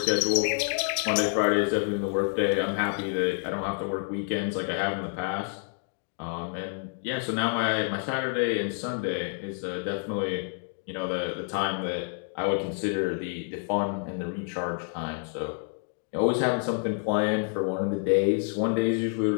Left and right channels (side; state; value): right; silent; 55 dB below the other